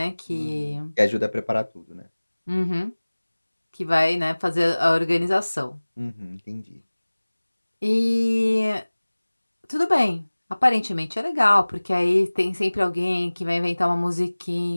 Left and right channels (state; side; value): inverted; both; correlation -1.00